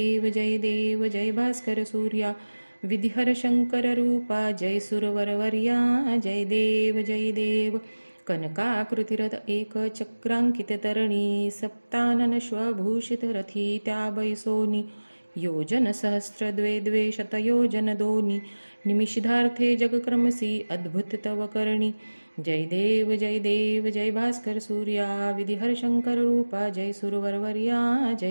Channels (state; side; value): inverted; both; correlation -1.00